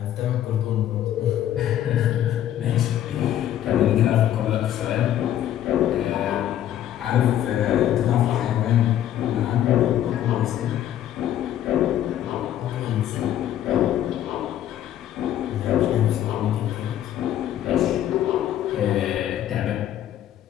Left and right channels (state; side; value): quieter; right; 11.6 dB